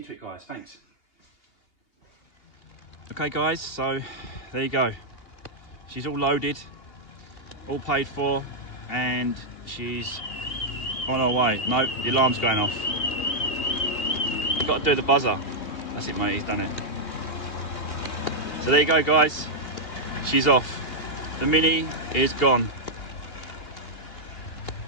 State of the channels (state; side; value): late; right; 2.8 ms